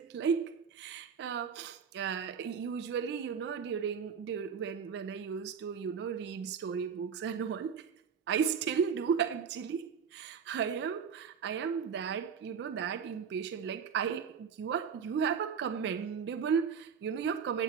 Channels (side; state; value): left; quieter; 6.8 dB